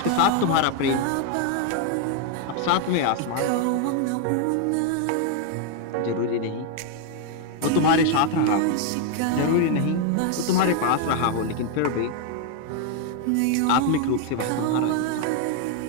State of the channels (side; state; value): both; different; correlation 0.00